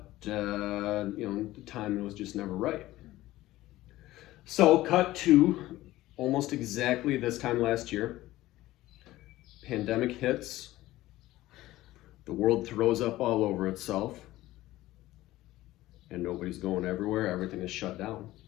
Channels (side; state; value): right; quieter; 16.5 dB